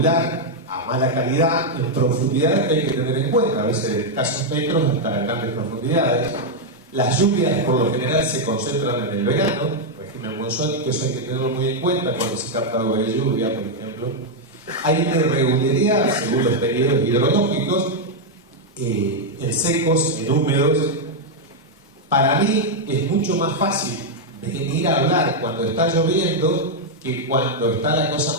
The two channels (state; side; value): normal; both; correlation -0.01